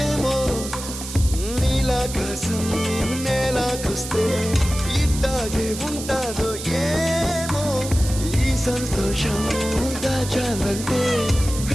నీలాకాశం నేలాకొస్తే ఇట్టాగే ఉంటాదో ఏమో ఈ సంతోషం దాచాలంటే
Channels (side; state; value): right; noise; hiss, 9 dB below the sound